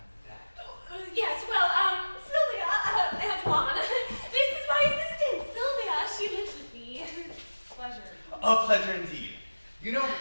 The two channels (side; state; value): both; inverted; correlation -1.00